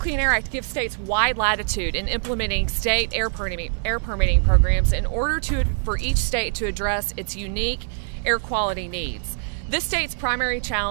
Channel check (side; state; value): left; silent; digital silence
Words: Air Act gives states wide latitude in implementing state air permitting programs in order for each state to address its unique air quality needs. This state's primary